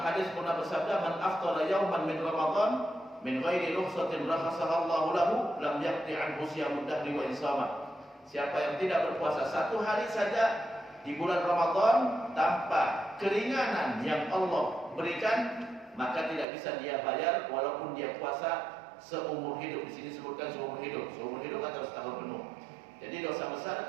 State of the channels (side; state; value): left; drops out; at 16.4 s